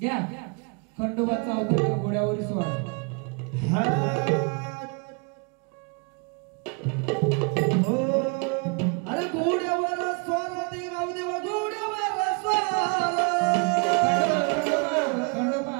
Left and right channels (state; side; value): quieter; left; 34.0 dB